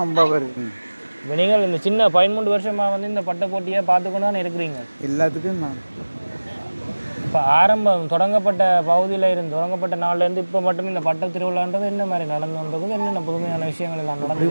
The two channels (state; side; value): inverted; both; correlation -1.00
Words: 50 வருது. இப்போ நீங்கள் இந்த சின்ன 13 வருஷமாக வந்து இந்த பட்டப்போட்டியை பார்த்துக்கொண்டு தான் இருக்கிறீங்க. எல்லாத்துக்கும் நான் இப்போ தொடங்கப்பட்ட தொடங்கப்பட்ட நாள்லேருந்து இப்போ மட்டும் இந்த பட்ட திருவிழான்றது என்ன மாதிரி நடந்துன்றது, என்னென்ன புதுமையான விஷயங்கள் எல்லாம்